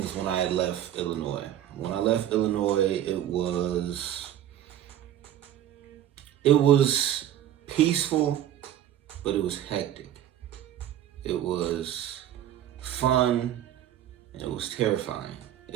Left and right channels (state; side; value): quieter; left; 11.6 dB